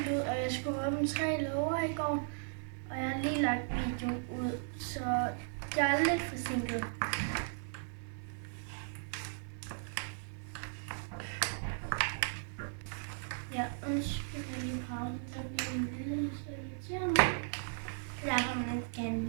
ud, og jeg skulle åbne 3 låger i går. Og jeg har lige lagt videoen ud, så jeg er lidt forsinket. Ja, undskyld, jeg lige pause. Der bliver en lille, så irriterer mig. Jeg har man ikke gerne en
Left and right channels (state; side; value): silent; left; 53 dB below the other